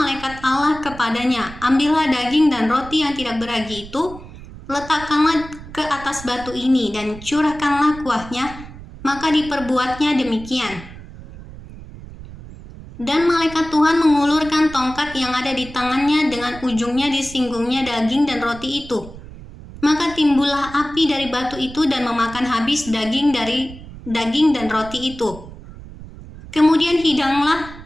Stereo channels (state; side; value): noise; right; rumble, 15 dB below the sound